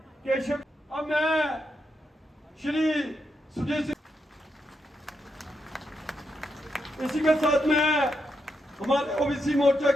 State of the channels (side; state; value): both; normal; correlation 0.83